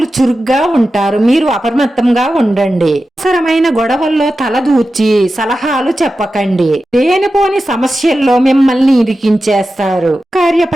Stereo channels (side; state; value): both; normal; correlation 0.92